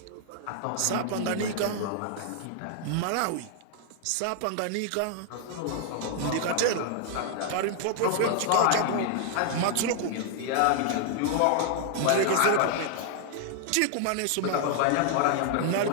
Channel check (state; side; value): different; both; correlation 0.00